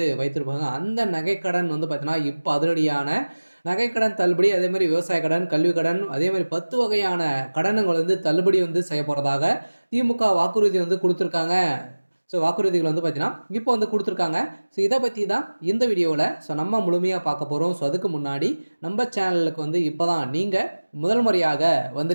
வைத்திருப்பாங்க. அந்த நகைக்கடன் வந்து பார்த்தீங்கன்னா, இப்ப அதிரடியான நகைக்கடன் தள்ளுபடி, அதே மாரி விவசாய கடன், கல்வி கடன், அதே மாரி 10 வகையான கடன்கள் வந்து தள்ளுபடி வந்து செய்யப்போறதாக திமுக வாக்குறுதி வந்து குடுத்துருக்காங்க. வாக்குறுதிகள் வந்து பார்த்தீங்கன்னா, இப்போ வந்து குடுத்துருக்காங்க. இத பத்தி தான் இந்த வீடியோல நம்ம முழுமையா பார்க்க போறோம். அதுக்கு முன்னாடி நம்ம சேனலுக்கு வந்து இப்ப தான் நீங்க முதல் முறையாக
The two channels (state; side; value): inverted; both; correlation -1.00